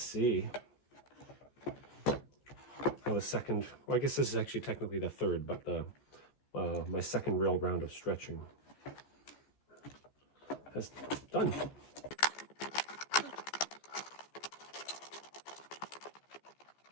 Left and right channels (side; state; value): right; late; 14 ms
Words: how the second, well, I guess this is actually technically the third, but the my second real round of stretching has done.